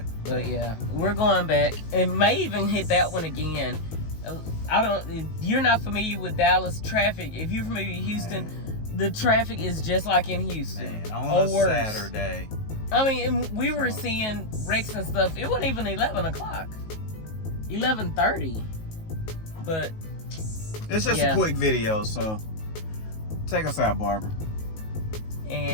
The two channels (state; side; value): late; right; 19 ms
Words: But yeah, we're going back and may even hit that one again. You're not familiar with Dallas traffic. If you're familiar with Houston, the traffic is just like in Houston. Man, on a Saturday. I mean, we were seeing wrecks and stuff. It wasn't even 11 o'clock. 11:30. But it's just a quick video, so take us out, Barbara.